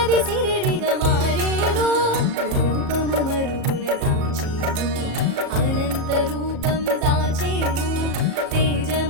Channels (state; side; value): late; left; 37 ms